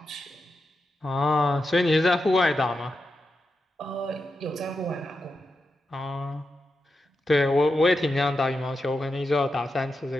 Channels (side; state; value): both; normal; correlation 0.88